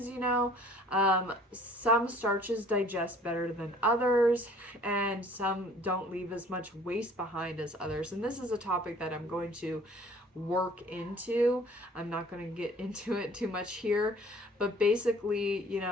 some starches digest better than others, and some don't leave as much waste behind as others. And this is a topic that I'm going to work into. I'm not going to get into it too much here, but basically,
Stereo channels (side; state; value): both; normal; correlation 0.53